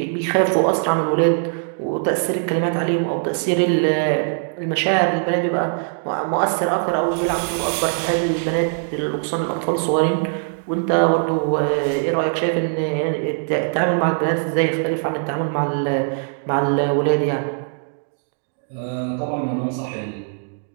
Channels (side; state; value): left; silent; 65 dB below the other